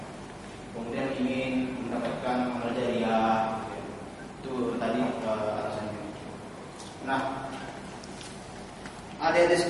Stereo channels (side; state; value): both; identical; correlation 1.00